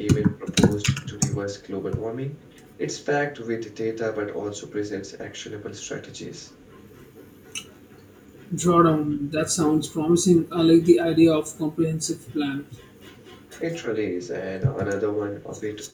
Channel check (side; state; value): both; identical; correlation 1.00